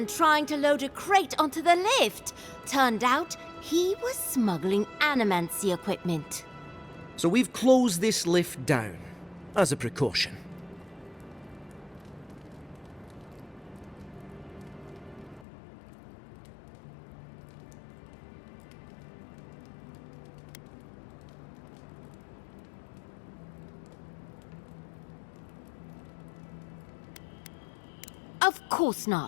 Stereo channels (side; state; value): right; drops out; at 15.5 s